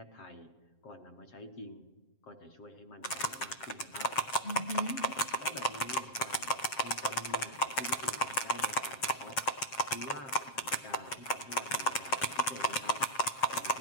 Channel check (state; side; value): late; right; 7.5 ms